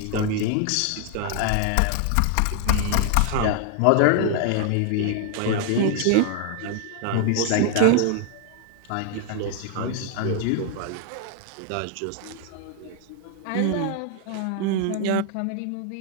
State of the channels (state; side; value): different; both; correlation 0.00